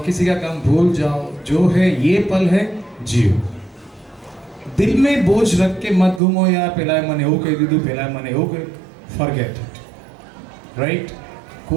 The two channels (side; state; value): left; drops out; at 6.2 s